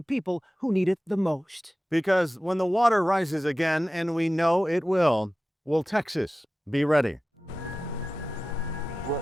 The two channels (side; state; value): both; normal; correlation 0.95